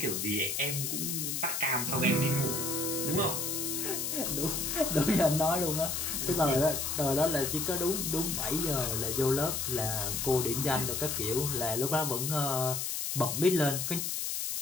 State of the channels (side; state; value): left; noise; hiss, 1 dB below the sound